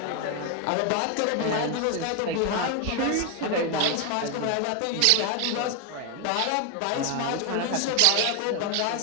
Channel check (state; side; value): different; both; correlation 0.01